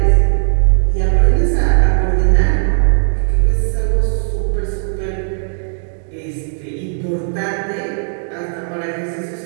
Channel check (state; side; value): silent; left; digital silence